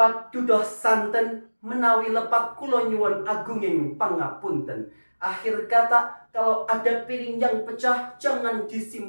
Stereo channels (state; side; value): inverted; both; correlation -1.00